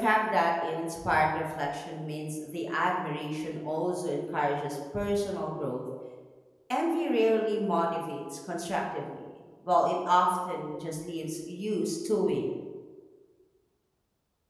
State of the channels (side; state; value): both; identical; correlation 1.00